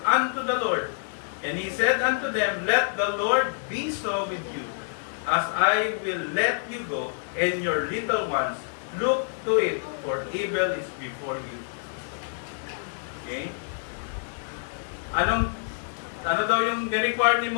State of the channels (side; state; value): right; silent; digital silence